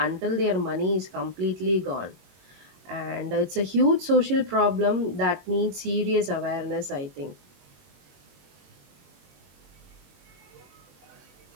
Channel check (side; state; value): left; late; 22 ms